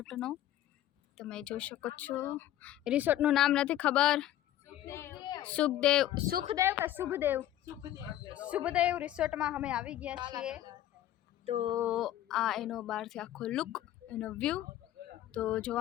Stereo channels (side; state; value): right; quieter; 12.9 dB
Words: તમે જોઈ શકો છો રિસોર્ટનું નામ નથી ખબર સુખદેવ કે શુભદેવ રિસોર્ટમાં અમે આવી ગયા છીએ તો આ એનો બહારથી આખો લુક એનો વ્યૂ તો